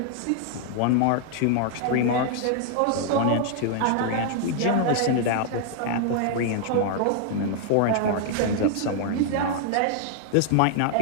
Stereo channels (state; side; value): different; both; correlation 0.00